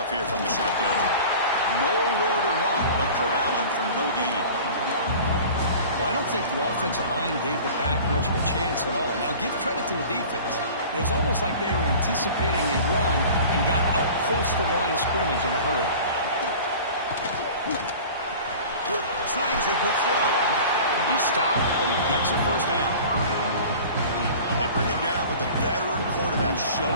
here from the shotgun. Nowhere to run. They'll corral him for no gain. Well, I don't think the offensive line gave the back much of a chance at all. Now, give credit to the defense. It was almost like they were anticipating a run and got up close to the line of scrimmage in a hurry. Slangs a good throw. He stopped, but he gets a first down. They bring him down, but the veteran quarterback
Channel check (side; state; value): both; inverted; correlation -0.41